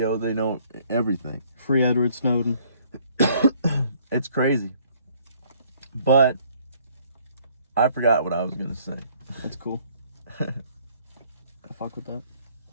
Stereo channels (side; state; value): both; inverted; correlation -0.62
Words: They know everything. Free Edward Snowden. It's crazy. But I forgot what I was going to say. That's cool. I fuck with that.